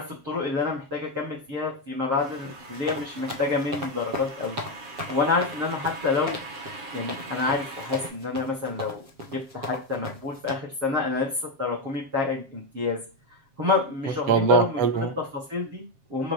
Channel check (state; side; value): late; left; 7.4 ms